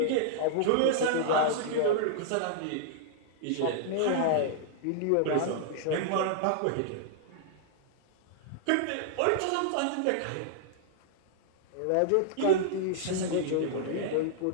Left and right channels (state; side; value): different; both; correlation -0.01